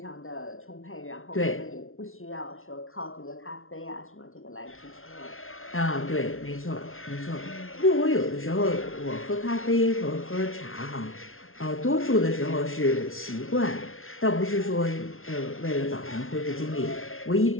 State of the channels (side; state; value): right; late; 0.61 ms